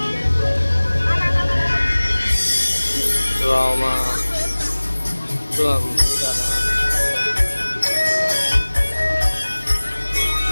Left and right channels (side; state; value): both; inverted; correlation -1.00